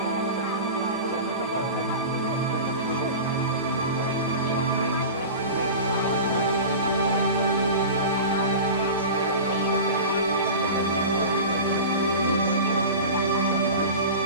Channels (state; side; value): inverted; both; correlation -0.31